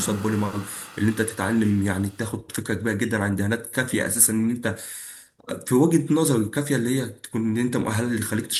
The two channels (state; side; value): identical; both; correlation 1.00